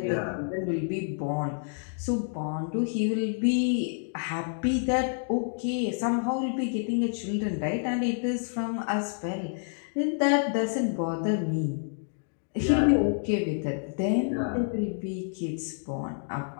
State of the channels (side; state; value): right; silent; digital silence